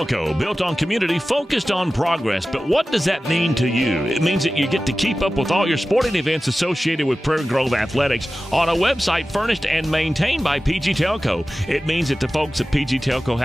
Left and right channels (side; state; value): both; normal; correlation 0.95